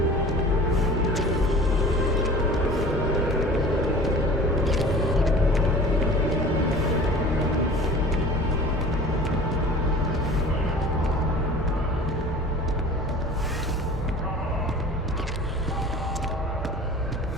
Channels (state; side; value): normal; both; correlation 0.42